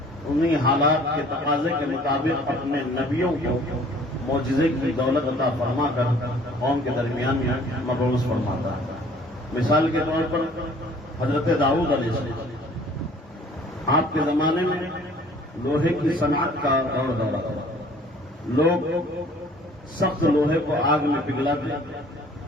انہی حالات کے تقاضے کے مطابق اپنے نبیوں کو معجزے کی دولت عطا فرما کر قوم کے درمیان میں مبعوث فرماتا ہے۔ مثال کے طور پر حضرت داؤد علیہ السلام، آپ کے زمانے میں لوہے کی صنعت کا دور دورہ تھا. لوگ سخت لوہے کو آگ میں پگھلاتے،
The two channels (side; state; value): both; normal; correlation 0.53